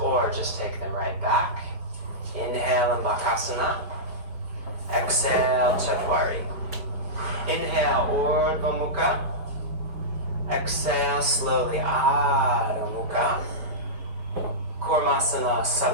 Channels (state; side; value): late; left; 4.7 ms